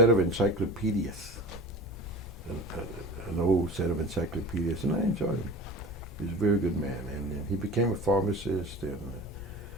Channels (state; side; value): noise; left; hum, 19 dB below the sound